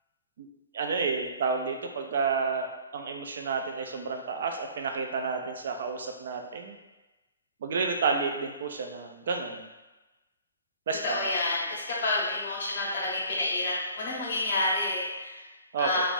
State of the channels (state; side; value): inverted; both; correlation -0.52